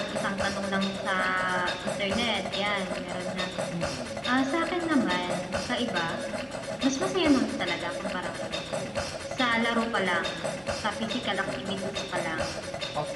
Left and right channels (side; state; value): both; identical; correlation 1.00